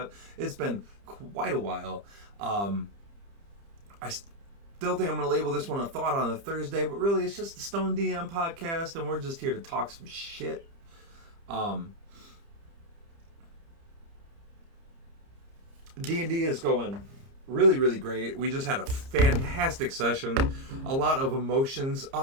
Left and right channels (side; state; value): left; late; 30 ms